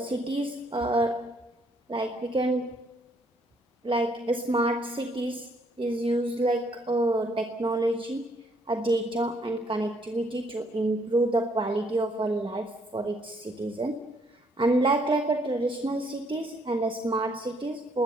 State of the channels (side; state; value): both; normal; correlation 0.68